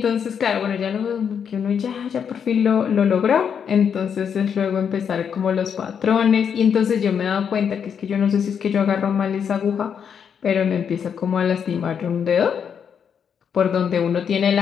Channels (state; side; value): quieter; right; 7.5 dB